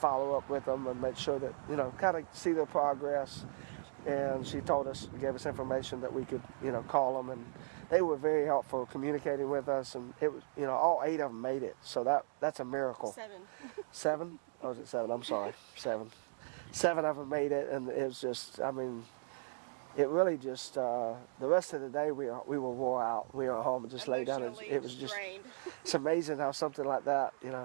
follow up with them and make sure that, kind of see their progress. And she told us, gave us information that we could, call them, and they were very helpful communicating with us, and it was, all 8 of them made it. So that's a miracle. 7. 7? Oh, was it 7? I'm sorry. 7. 7 of them made it, and it was just, it really just, the rest of the day we were wore out. We were at home and just lay down. It was just, it's amazing how something like that,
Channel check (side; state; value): left; silent; digital silence